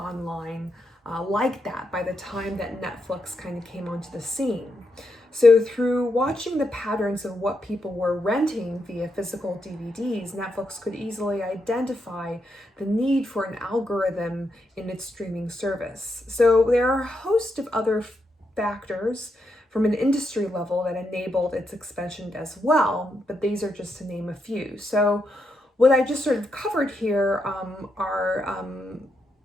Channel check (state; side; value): normal; both; correlation 0.82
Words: like that by the time that Netflix kind of came onto the scene. So through watching the patterns of what people were renting via physical DVDs, Netflix could easily identify the need for an algorithm in its streaming service. So there are a host of other factors from an industry level that enabled its expansion as well, but these are just to name a few. So what I just sort of covered here are